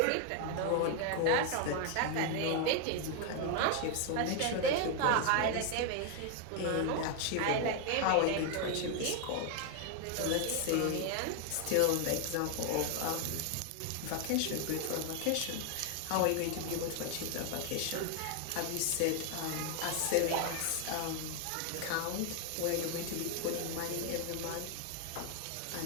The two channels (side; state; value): both; different; correlation 0.01